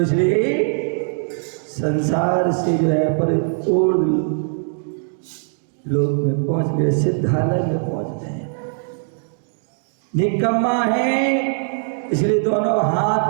इसलिए संसार से जो है परिपूर्ण लोक में पहुंच गए, सिद्धालय में पहुंच गए। निकम्मा है, इसलिए दोनों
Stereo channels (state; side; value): silent; left; digital silence